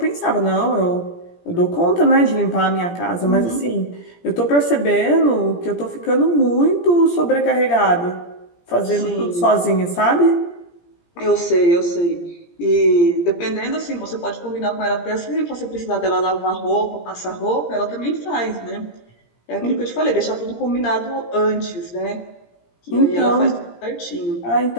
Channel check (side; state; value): right; late; 17 ms